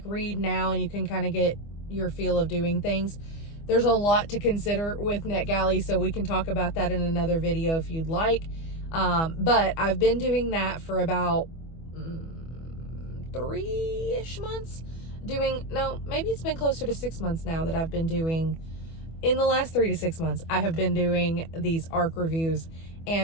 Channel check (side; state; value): right; late; 25 ms